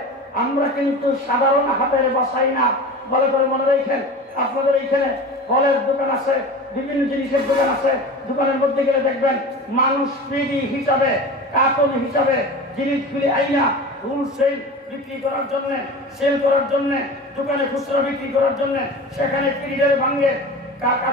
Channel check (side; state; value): both; normal; correlation 0.33